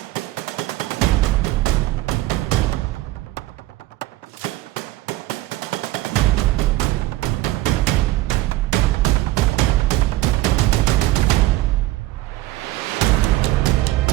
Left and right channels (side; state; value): left; quieter; 16.9 dB